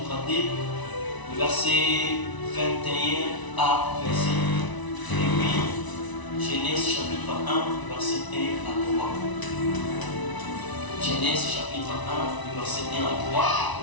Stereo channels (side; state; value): right; late; 1.0 ms